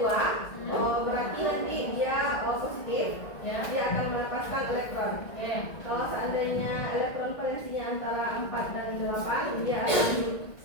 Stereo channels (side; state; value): right; late; 1.8 ms